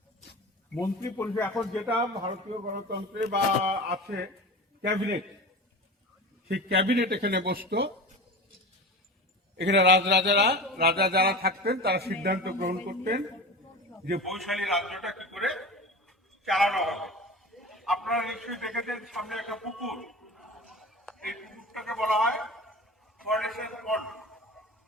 মন্ত্রী পরিষদ এখন যেটা ভারতীয় গণতন্ত্রে বা আছে ক্যাবিনেট, সেই ক্যাবিনেট এখানে বসতো। এখানে রাজা যারা থাকতেন তারা সিদ্ধান্ত গ্রহণ করতেন যে বৈশালী রাজ্যটা কি করে চালানো হবে। আপনারা নিশ্চয়ই দেখেছেন সামনে একটা পুকুর, এই পুকুরটাকে বলা হয় ফরেস্টের পন্ড।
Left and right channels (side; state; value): both; normal; correlation 0.32